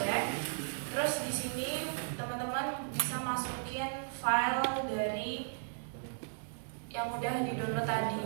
Terus di sini teman-teman bisa masukin file dari yang udah di-download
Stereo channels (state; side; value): silent; left; 54 dB below the other